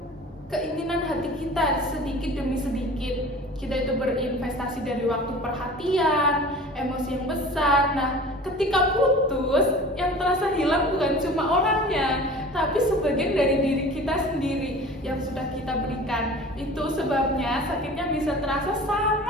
keinginan hati kita sedikit demi sedikit. Kita itu berinvestasi dari waktu, perhatian, emosi yang besar. Nah, ketika putus, yang terasa hilang bukan cuma orangnya, tapi sebagian dari diri kita sendiri yang sudah kita berikan. Itu sebabnya sakitnya bisa terasa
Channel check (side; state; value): both; normal; correlation 0.40